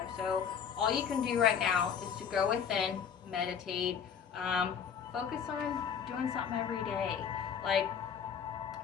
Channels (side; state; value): right; quieter; 7.5 dB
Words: So all you can do right now is to go within, meditate, focus on doing something every day. Like,